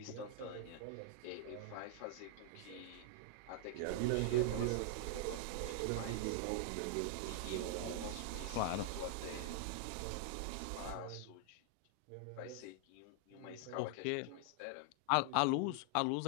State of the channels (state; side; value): different; both; correlation -0.01